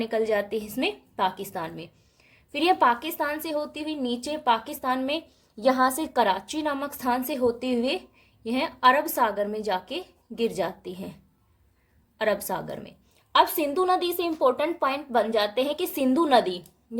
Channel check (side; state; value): both; identical; correlation 1.00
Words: जाती है इसमें पाकिस्तान में। फिर यह पाकिस्तान से होती हुई नीचे पाकिस्तान में यहाँ से कराची नामक स्थान से होते हुए यह अरब सागर में जाके गिर जाती है, अरब सागर में। अब सिंधु नदी से इंपॉर्टेंट पॉइंट बन जाते हैं कि सिंधु नदी